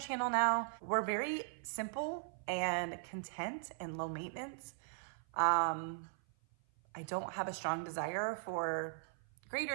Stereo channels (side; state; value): left; silent; 52 dB below the other